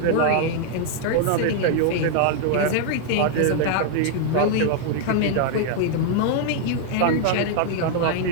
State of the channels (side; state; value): both; different; correlation 0.00